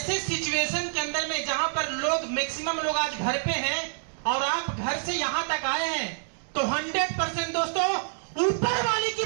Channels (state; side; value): silent; left; digital silence